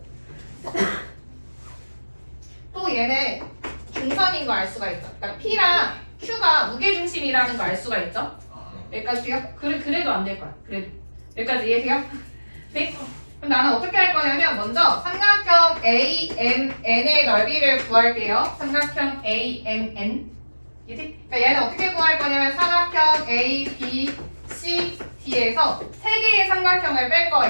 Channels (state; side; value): inverted; both; correlation -1.00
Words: 얘는 중선인 거 알 수가 있죠. 그러니까 P랑 Q가 무게중심이라는 거 알 수가 있죠. 여기까지 돼요? 그래도 안 될 거야. 그래도 여기까지 이해돼요? 네? 그럼 나는 어떻게 할 거냐면 먼저 삼각형 AMN의 넓이를 구할게요. 삼각형 AMN. 이해돼? 그러니까 얘는 어떻게 구할 거냐면 삼각형 A, B, C, D에서 세 개의 삼각형을 뺄